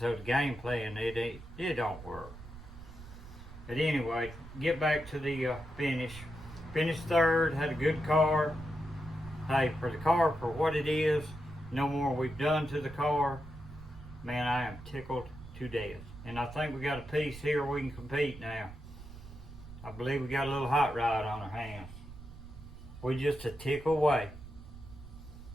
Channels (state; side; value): noise; right; rumble, 15 dB below the sound